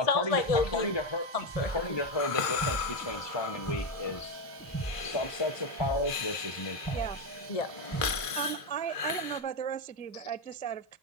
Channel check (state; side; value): late; right; 1.5 ms